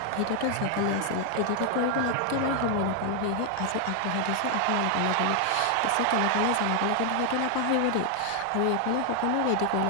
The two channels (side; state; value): both; different; correlation 0.00